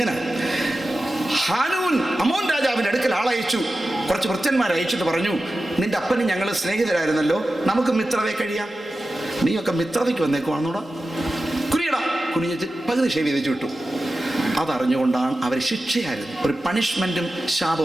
ഹാനൂൻ അമോൻ രാജാവിൻ്റെ അടുക്കൽ ആളയച്ചു. കുറച്ച് ഭൃത്യന്മാരെ അയച്ചിട്ട് പറഞ്ഞു, നിന്റെ അപ്പനും ഞങ്ങൾ സ്നേഹിതരായിരുന്നല്ലോ, നമുക്ക് മിത്രതയെ കഴിയാം. നീയൊക്കെ മിത്രതയ്ക്ക് വന്നേക്കുവാണെന്നോടാ. കുനിഞ്ഞിട്ട് പകുതി ഷേവ് ചെയ്ത് വിട്ടു. അതറിഞ്ഞുകൊണ്ടാണ് അവർ ശിക്ഷയായിരുന്നു, ഒരു പണിഷ്മെൻറ്റും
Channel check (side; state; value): both; normal; correlation 0.93